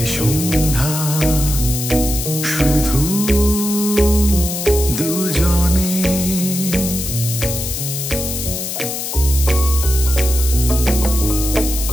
সন্ধ্যা, শুধু দুজনে।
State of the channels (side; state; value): left; noise; hiss, 5 dB below the sound